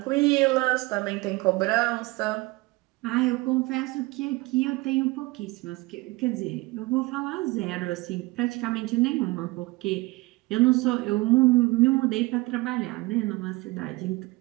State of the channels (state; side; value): quieter; left; 22.3 dB